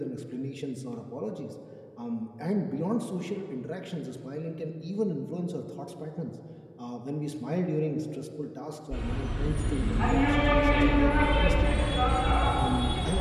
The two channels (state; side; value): identical; both; correlation 1.00